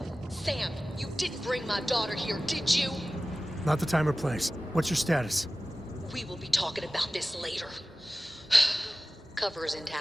Sam, you didn't bring my daughter here, did you? Not the time or place. What's your status? We will be talking about this later. Cover is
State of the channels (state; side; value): normal; both; correlation 0.96